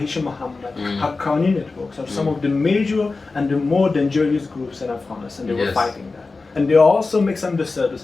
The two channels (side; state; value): right; quieter; 3.8 dB